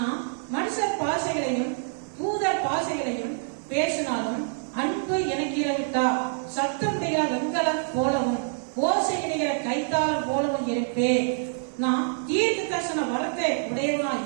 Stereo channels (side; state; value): left; silent; 61 dB below the other